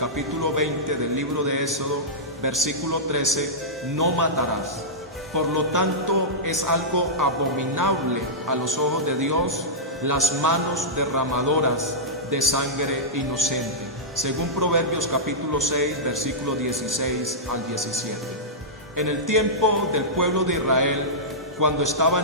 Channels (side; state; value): both; normal; correlation -0.13